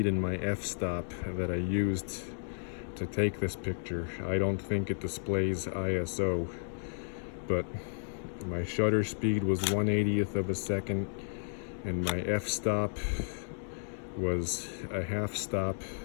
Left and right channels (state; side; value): silent; right; digital silence